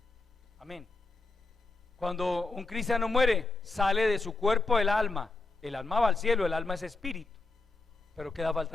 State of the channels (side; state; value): right; quieter; 3.4 dB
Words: Amén. Cuando un cristiano muere, sale de su cuerpo el alma va al cielo, el alma es espíritu, pero queda